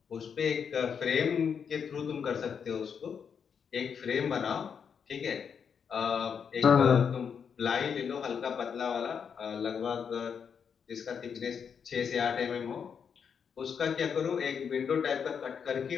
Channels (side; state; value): right; quieter; 6.9 dB